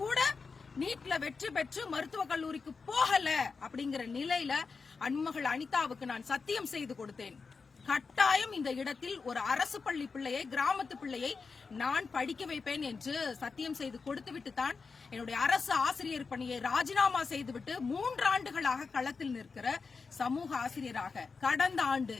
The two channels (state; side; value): quieter; right; 4.8 dB